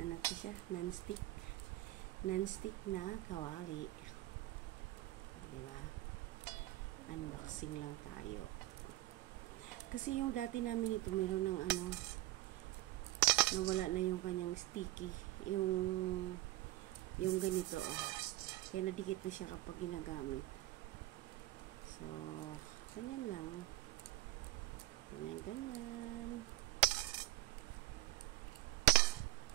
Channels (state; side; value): quieter; left; 16.6 dB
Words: to siya? Non-stick. Non-stick na kawali. Diba? Unboxing lang tayo. Kasi yung dati namin ito, meron ng nawala na yung kanyang sticky. Yung ganito, Kaya nadikit na siya kapag ginagamit. So, ganyan lang. Ganyan.